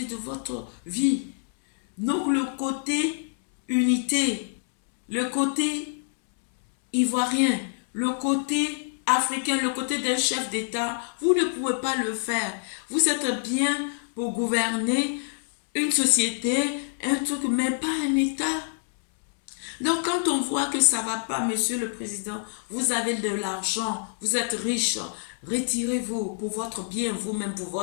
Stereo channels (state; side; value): silent; right; 61 dB below the other